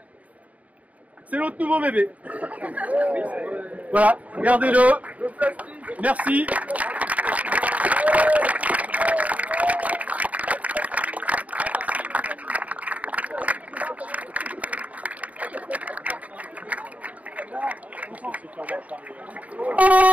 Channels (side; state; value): left; late; 0.070 ms